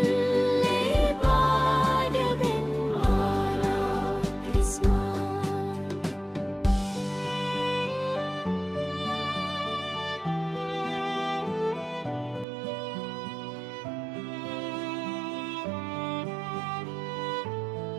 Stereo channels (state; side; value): drops out; left; at 12.5 s